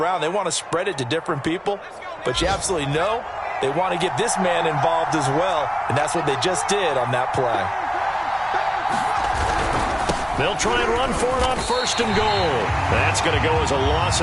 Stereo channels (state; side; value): identical; both; correlation 1.00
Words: They want to spread it to different people, but you absolutely know they want to get this man involved as well, and that's what they just did on that play. They'll try and run for it on 1st and goal. That's going to go as a loss